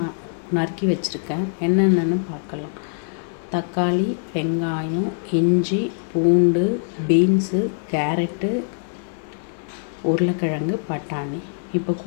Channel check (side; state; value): right; silent; 64 dB below the other